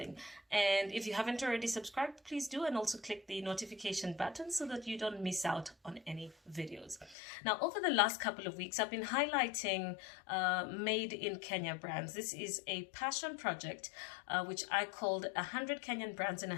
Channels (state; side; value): drops out; right; at 7.2 s